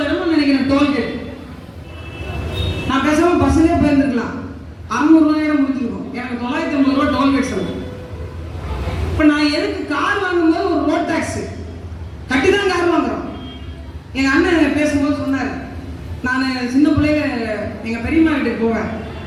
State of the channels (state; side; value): identical; both; correlation 1.00